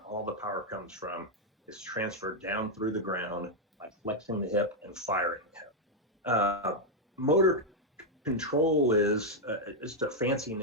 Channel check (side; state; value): both; normal; correlation 0.00